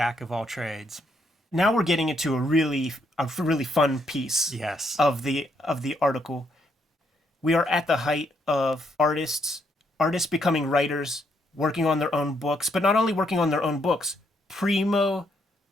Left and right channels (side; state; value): both; normal; correlation 0.74